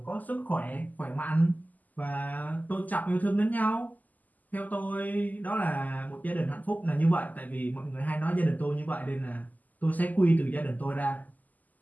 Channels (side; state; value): right; late; 0.081 ms